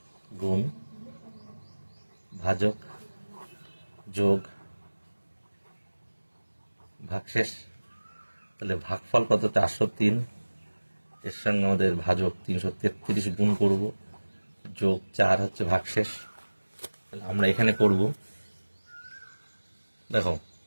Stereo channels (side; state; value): both; inverted; correlation -1.00